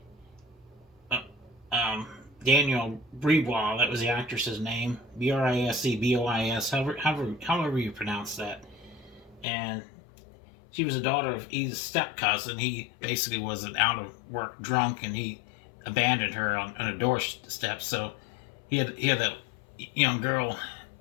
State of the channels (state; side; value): drops out; right; at 9.5 s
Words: uh, Daniel Bribois. That was the actress's name, Brisebois. However you pronounce that. And she was a daughter of Edith's step cousin. He basically was an out of work drunk, and he abandoned her on a doorstep. So he had that young girl